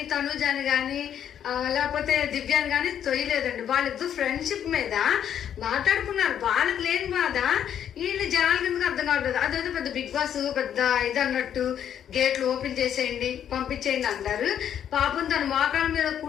తనుజాని కానీ లేకపోతే దివ్యాన్ని కానీ తొయ్యలేదండి. వాళ్ళిద్దరు ఫ్రెండ్షిప్ మీద మాట్లాడుకున్నారు. వాళ్ళకి లేని బాధ వీళ్ళు జనాల కిందకి అర్థం కావట్లేదు. అదేదో పెద్ద బిగ్ బాస్ పెద్ద ఇది అన్నట్టు గేట్లు ఓపెన్ చేసేయండి పంపించేయండి అంటారు. పాపం తన మోకాళ్ళ మీద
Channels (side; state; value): right; quieter; 9.5 dB